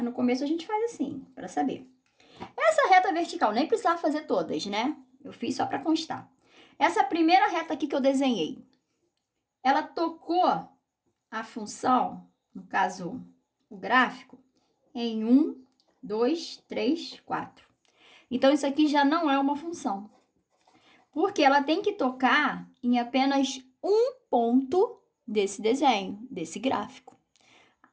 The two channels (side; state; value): both; identical; correlation 1.00